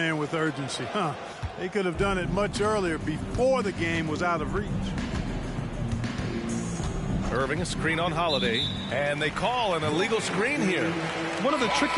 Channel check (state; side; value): identical; both; correlation 1.00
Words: with urgency. They could have done it much earlier, before the game was out of reach. Irving, a screen on Holiday, and they call an illegal screen here. One of the